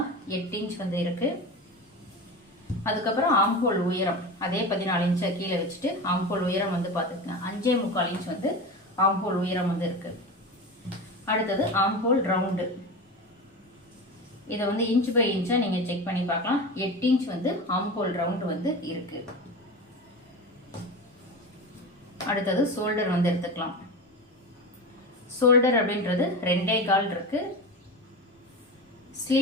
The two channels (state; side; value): normal; both; correlation 0.26